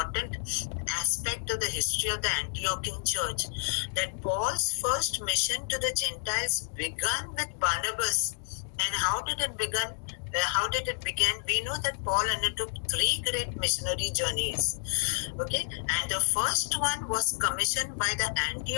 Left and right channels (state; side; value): silent; right; digital silence